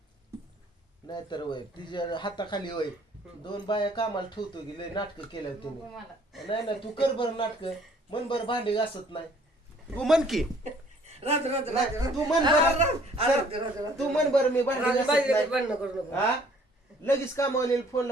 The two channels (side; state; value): both; normal; correlation 0.58